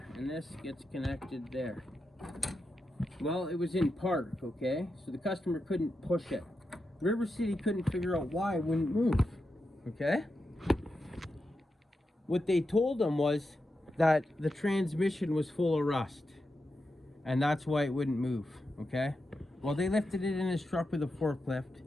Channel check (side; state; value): both; normal; correlation 0.88